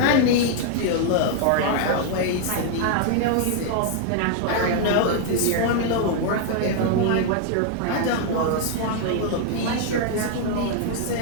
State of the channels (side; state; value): both; different; correlation 0.00